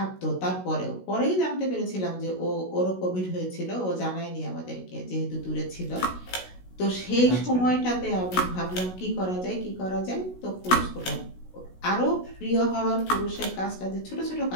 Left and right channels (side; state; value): right; late; 16 ms